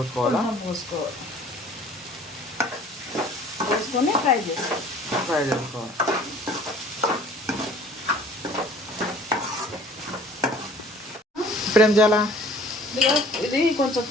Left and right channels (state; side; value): normal; both; correlation 0.51